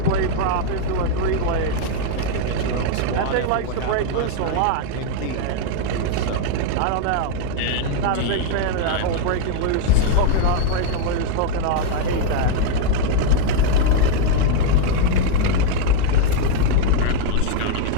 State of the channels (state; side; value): different; both; correlation 0.00